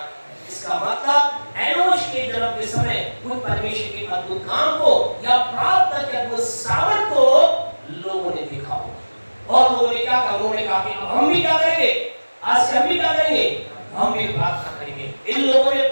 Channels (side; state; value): both; inverted; correlation -1.00